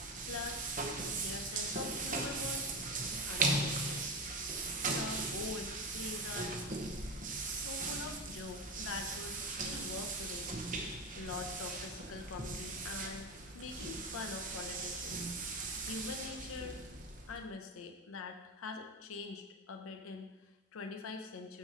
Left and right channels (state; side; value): normal; both; correlation 0.20